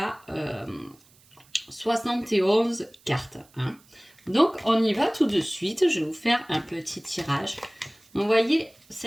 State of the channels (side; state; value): right; noise; hiss, 29 dB below the sound